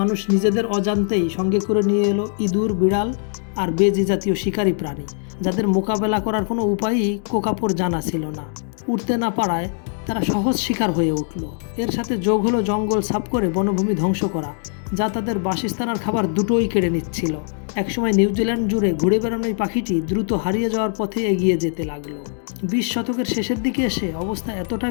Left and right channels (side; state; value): right; silent; 56 dB below the other